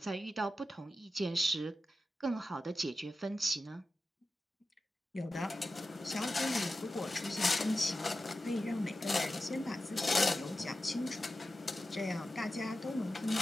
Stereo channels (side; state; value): both; normal; correlation 0.92